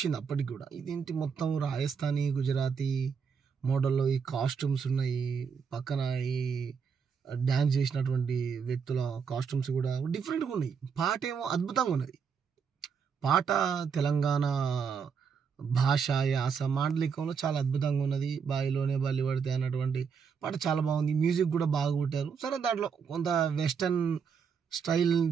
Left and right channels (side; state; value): left; quieter; 6.4 dB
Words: అప్పటికి కూడా, ఇదేంటి మొత్తం రాజస్థానీ గుజరాతీ మోడల్లో ఈ కాస్ట్యూమ్స్ ఉన్నాయి, పక్కన ఈ డ్యాన్స్ చేసినటువంటి వ్యక్తుల కాస్ట్యూమ్స్ కూడా డిఫరెంట్గా ఉన్నాయి, పాట ఏమో అద్భుతంగా ఉన్నది. పాట తెలంగాణ భాష యాస మాండలికంలో చాలా అద్భుతంగా ఉన్నది. బాయిలోనే బల్లి పడితే అన్నటువంటి పాట చాలా బాగుంది, మ్యూజిక్ కూడా బాగా కొట్టారు. సరే, దాంట్లో కొంత వెస్టర్న్